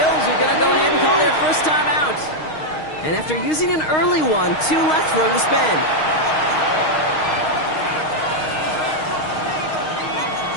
are going to go ahead and call their first time out. And after using an early one, 2 left for him to spend.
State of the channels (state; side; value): late; right; 6.4 ms